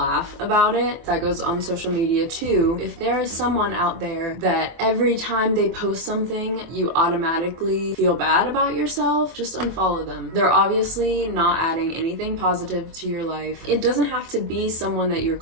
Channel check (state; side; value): late; left; 24 ms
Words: about it. That goes on social media too. If there is someone out there that every time they post something you automatically feel bad about yourself, just unfollow them. They're obviously not adding anything positive to your life. It doesn't have to be someone that you're